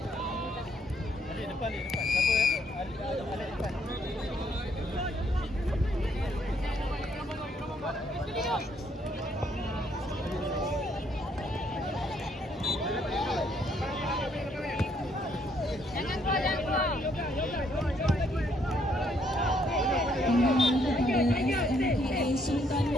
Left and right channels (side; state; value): both; normal; correlation 0.69